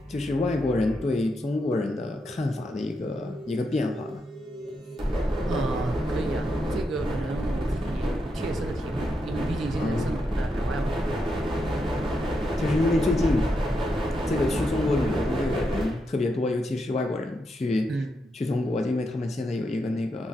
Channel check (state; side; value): normal; both; correlation 0.83